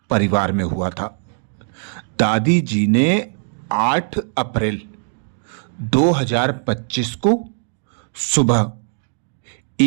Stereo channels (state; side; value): silent; left; 65 dB below the other